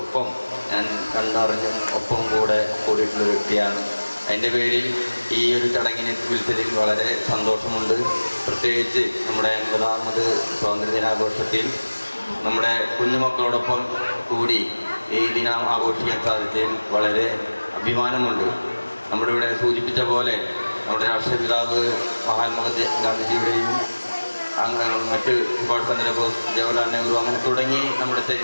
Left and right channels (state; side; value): inverted; both; correlation -1.00